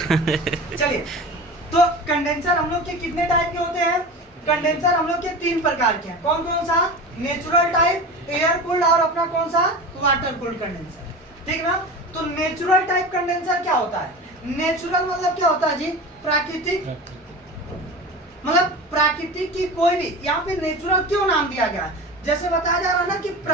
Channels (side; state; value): both; normal; correlation 0.31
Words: चलिए, तो कंडेंसर हम लोग के कितने टाइप के होते हैं? कंडेंसर हम लोग के 3 प्रकार के हैं। कौन कौन सा? नेचुरल टाइप, एयर कूल्ड और अपना कौन सा? Water cooled condenser. ठीक ना? तो नेचुरल टाइप कंडेंसर क्या होता है? नेचुरल मतलब क्या होता है जी? प्राकृतिक, मतलब प्राकृतिक की कोई भी, यहाँ पे नेचुरल क्यों नाम दिया गया है? जैसे बताया जा रहा है ना कि